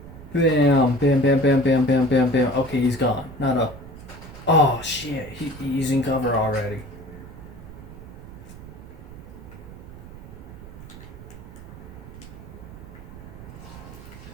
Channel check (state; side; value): noise; right; rumble, 15 dB below the sound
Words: bam, bam, bam, bam, bam, bam, bam, bam. Okay, he's gone. Not a, oh shit, he's in cover already.